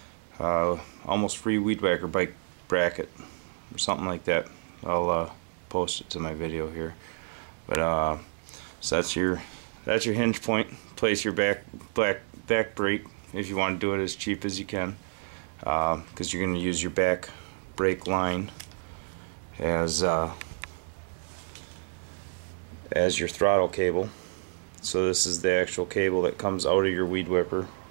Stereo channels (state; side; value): silent; left; digital silence